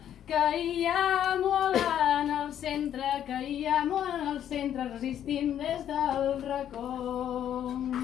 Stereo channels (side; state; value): right; quieter; 10.3 dB